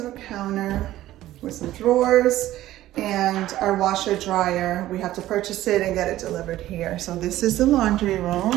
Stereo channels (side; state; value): left; quieter; 14.7 dB